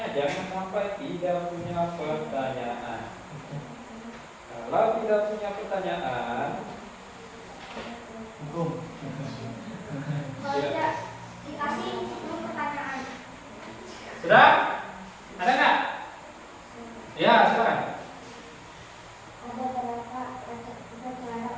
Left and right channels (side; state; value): both; identical; correlation 1.00